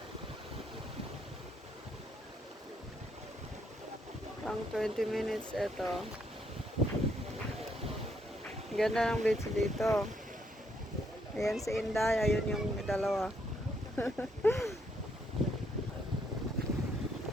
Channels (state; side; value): normal; both; correlation 0.73